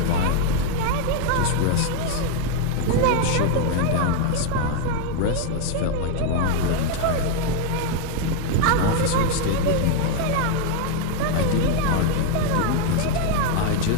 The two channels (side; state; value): both; different; correlation 0.01